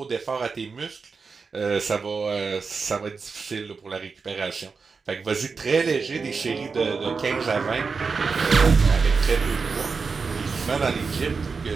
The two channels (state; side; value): quieter; left; 4.9 dB